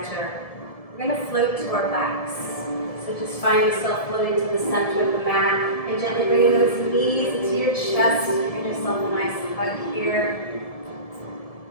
We're going to float to our backs. So just find yourself floating to the center of the mat and gently bringing those knees into your chest. Giving yourself a nice hug here.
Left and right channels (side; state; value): right; late; 1.7 ms